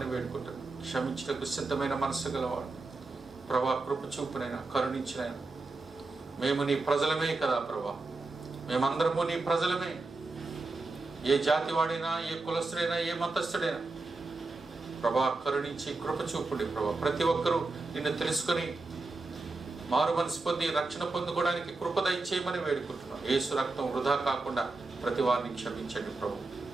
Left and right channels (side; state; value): left; quieter; 3.4 dB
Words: వేడుకుంటున్నాం. క్షమించటకు సిద్ధమైన మనసు గలవాడు ప్రభా. కృప చూపునైనా, కరుణించినైనా. మేము నీ ప్రజలమే కదా ప్రభా. మేమందరము నీ ప్రజలమే. ఏ జాతి వాడైనా, ఏ కులస్తుడైనా, ఏ మతస్థుడైనా ప్రభా కరుణించి కృప చూపుడి ప్రభా. ప్రతి ఒక్కరూ నిన్ను తెలుసుకొని మారు మనసు పొంది రక్షణ పొందుకోవడానికి కృప దయచేయమని వేడుకుంటున్నాం. యేసు రక్తం వృధా కాకుండా ప్రతి వారిని క్షమించండి ప్రభు.